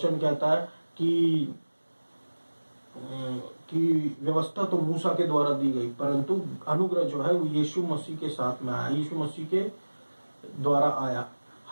कहता है कि व्यवस्था तो मूसा के द्वारा दी गई, परंतु अनुग्रह जो है वो यीशु मसीह के साथ में आया, यीशु मसीह के द्वारा आया।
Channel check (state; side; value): inverted; both; correlation -1.00